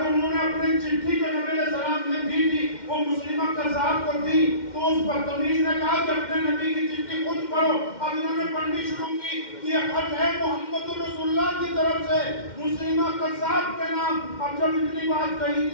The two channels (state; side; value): late; right; 2.1 ms